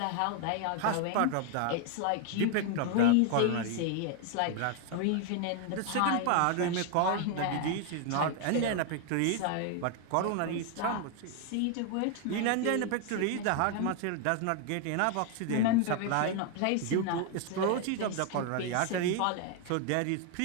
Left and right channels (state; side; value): different; both; correlation 0.00